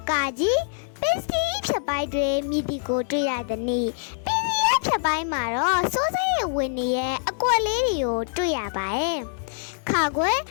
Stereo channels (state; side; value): silent; right; digital silence